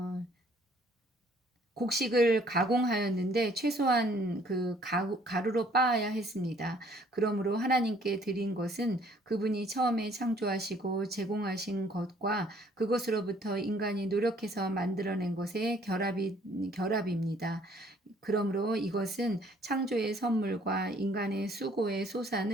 곡식을 가공하였는데 최소한 그 가루로 빻아야 했습니다. 그러므로 하나님께 드린 것은 그분이 처음에 창조하시고 제공하신 것과 그것으로부터 인간이 노력해서 만들어낸 것의 결합입니다. 그러므로 이것은 창조의 선물과 인간의 수고의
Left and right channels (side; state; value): both; normal; correlation 0.60